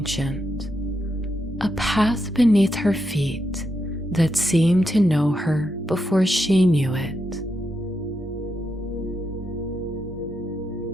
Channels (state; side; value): normal; both; correlation 0.83